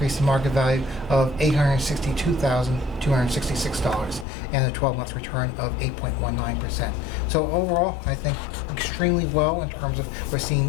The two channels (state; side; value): drops out; right; at 4.2 s